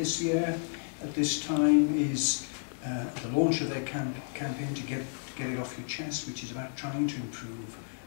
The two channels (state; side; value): silent; right; digital silence